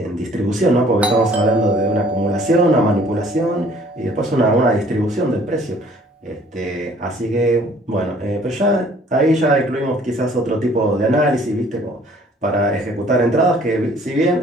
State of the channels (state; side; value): normal; both; correlation 0.56